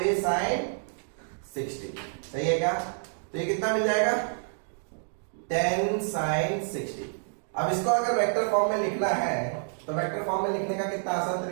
sin 60, सही है क्या। तो ये कितना मिल जाएगा 10 sin 60। अब इसको अगर वेक्टर फॉर्म में लिखना है तो वेक्टर फॉर्म में लिखने का कितना आसान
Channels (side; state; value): left; silent; digital silence